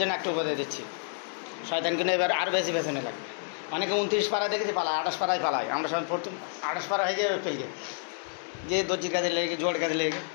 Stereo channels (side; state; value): right; silent; digital silence